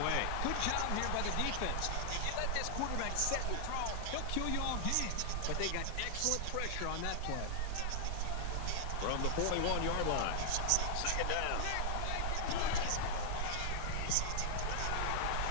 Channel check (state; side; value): different; both; correlation 0.00